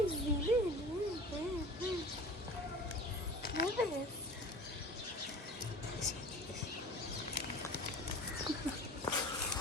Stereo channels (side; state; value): both; normal; correlation 0.39